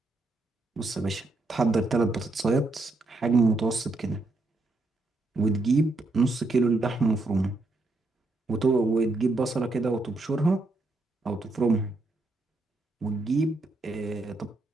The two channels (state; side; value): quieter; left; 3.0 dB